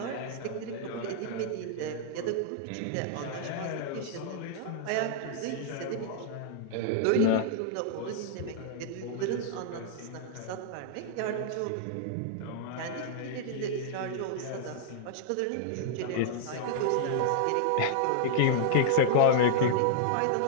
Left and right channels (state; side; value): different; both; correlation -0.01